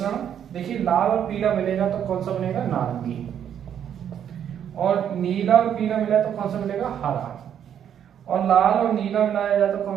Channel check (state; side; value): quieter; left; 9.2 dB